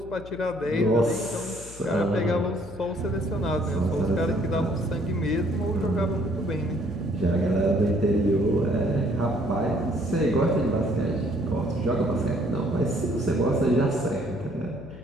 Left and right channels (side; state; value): left; noise; hum, 17 dB below the sound